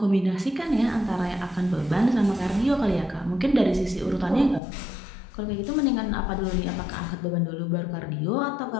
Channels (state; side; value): drops out; right; at 4.6 s